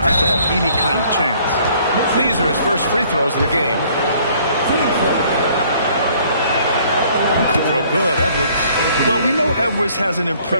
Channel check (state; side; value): inverted; both; correlation -0.59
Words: to have any kind of chance. These are his first free throws in the game. Free throw good, Edwards. Well, we know Edwards has an